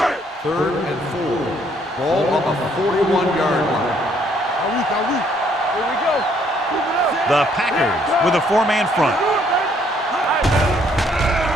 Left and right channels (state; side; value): normal; both; correlation 0.66